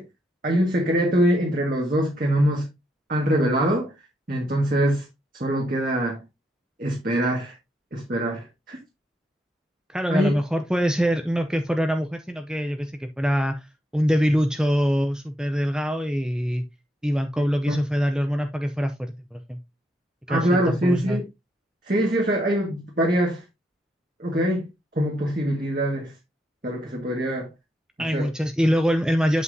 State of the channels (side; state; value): both; normal; correlation 0.79